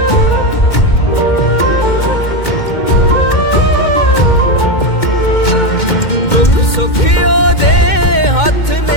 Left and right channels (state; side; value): late; right; 2.2 ms